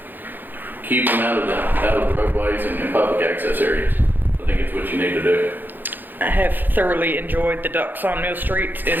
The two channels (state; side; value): late; left; 0.089 ms